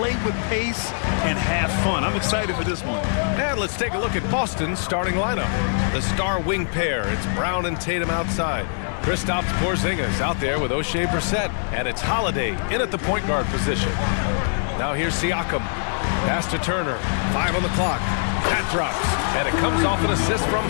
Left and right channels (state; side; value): silent; right; digital silence